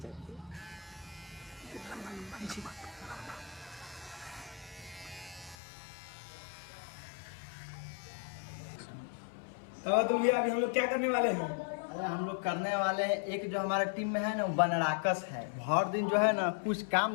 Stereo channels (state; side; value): drops out; right; at 5.6 s